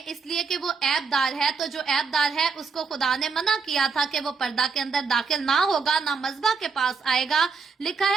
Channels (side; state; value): left; quieter; 5.1 dB